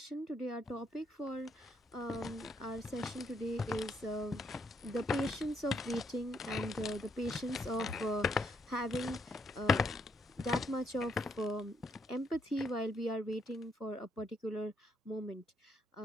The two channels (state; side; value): normal; both; correlation 0.74